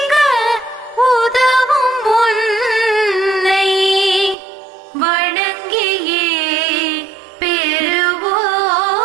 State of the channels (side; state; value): left; drops out; at 4.4 s